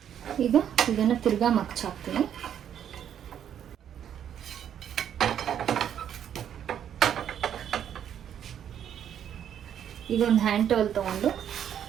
ಈಗ ಇದನ್ನ ತಿರ್ಗಾ ಮಗ್ಚ್ ಹಾಕ್ತೀನಿ. ಈಗ ಒಂದು ಹ್ಯಾಂಡ್ ಟವಲ್ ತಗೊಂಡು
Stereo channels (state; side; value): quieter; left; 9.4 dB